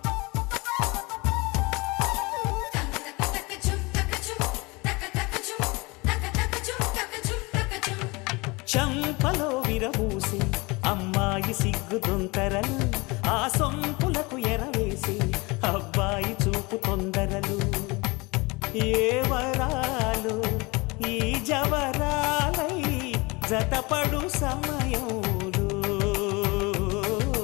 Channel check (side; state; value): right; quieter; 25.4 dB